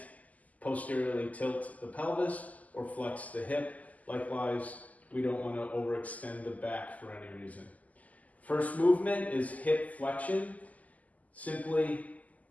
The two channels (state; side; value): late; right; 0.076 ms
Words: posteriorly tilt the pelvis or flex the hip. Likewise, we don't want to overextend the back for any reason. First movement is hip flexion. Simply